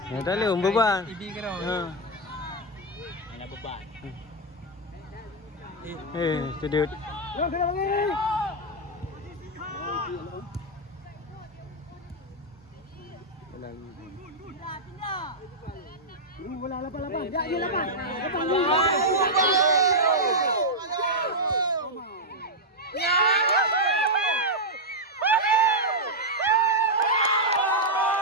Ya tak boleh beban. Ibi kena. Mana beban? Sedut. Kena lagi. Bola lapan. Ya, lapan.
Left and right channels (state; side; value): normal; both; correlation -0.04